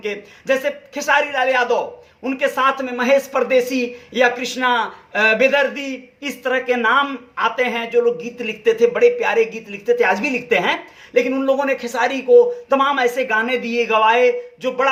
जैसे खेसारी लाल यादव, उनके साथ में महेश परदेसी या कृष्णा बेदर्दी, इस तरह के नाम आते हैं जो लोग गीत लिखते थे, बड़े प्यारे गीत लिखते थे, आज भी लिखते हैं। लेकिन उन लोगों ने खेसारी को तमाम ऐसे गाने दिए, गवाए जो बड़ा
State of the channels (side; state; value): both; identical; correlation 1.00